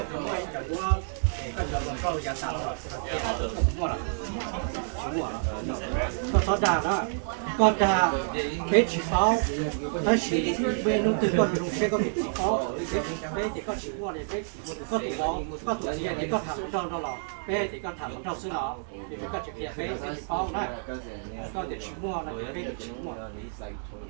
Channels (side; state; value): left; silent; digital silence